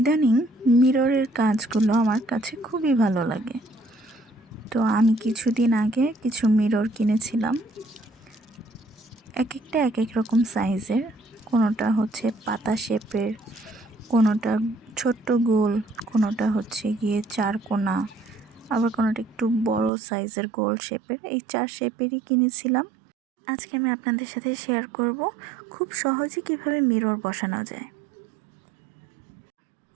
মিররের কাজগুলো আমার কাছে খুবই ভালো লাগে। তো আমি কিছুদিন আগে কিছু মিরর কিনেছিলাম। এক একটা এক এক রকম সাইজের। কোনোটা হচ্ছে পাতা শেপের, কোনোটা ছোট্ট গোল, কোনোটা হচ্ছে গিয়ে চারকোনা, আবার কোনোটা একটু বড় সাইজের গোল শেপের। এই 4 শেপেরই কিনেছিলাম। আজকে আমি আপনাদের সাথে শেয়ার করব খুব সহজে কিভাবে মিরর বসানো যায়।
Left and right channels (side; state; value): left; drops out; at 19.9 s